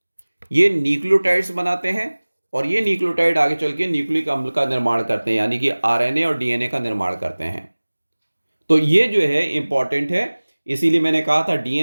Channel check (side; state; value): both; inverted; correlation -1.00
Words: ये न्यूक्लियोटाइड्स बनाते हैं और ये न्यूक्लियोटाइड आगे चल के न्यूक्लिक अम्ल का निर्माण करते हैं, यानी कि आरएनए और डीएनए का निर्माण करते हैं। तो ये जो है इंपॉर्टेंट है, इसीलिए मैंने कहा था